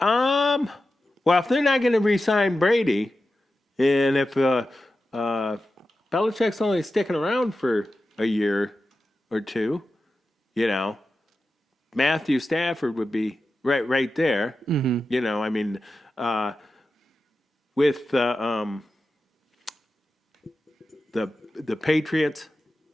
if they're not going to re-sign Brady, and if Belichick's only sticking around for a year or two, Matthew Stafford would be right there. Mm-hmm. I mean, with the Patriots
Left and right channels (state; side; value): normal; both; correlation 0.92